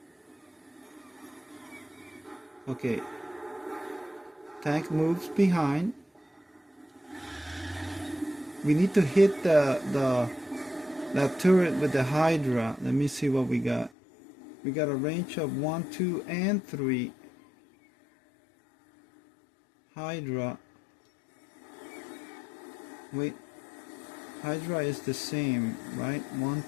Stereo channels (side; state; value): right; drops out; at 13.9 s